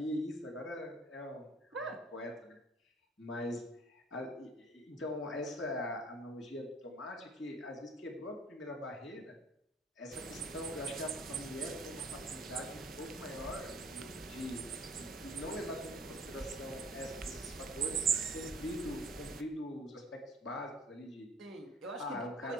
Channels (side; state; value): both; normal; correlation 0.53